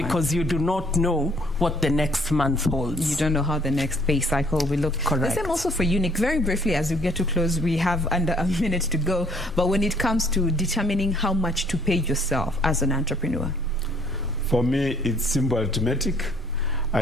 you do not know what the next month holds. You don't know how the next pay cycle will look. Correct. The same also for you, Nick. Very briefly, as we get to close, we have under a minute to go. But when it comes to determining how much to pay yourself as an entrepreneur? For me, it's simple arithmetic.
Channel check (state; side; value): normal; both; correlation 0.61